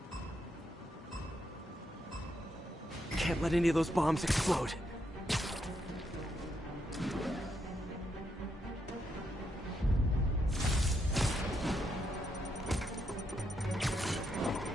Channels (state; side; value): normal; both; correlation 0.80